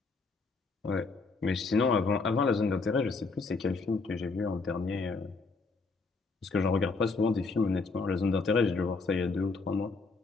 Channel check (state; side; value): quieter; right; 4.1 dB